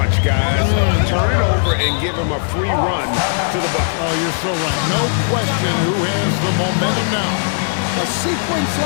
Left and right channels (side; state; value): right; silent; 68 dB below the other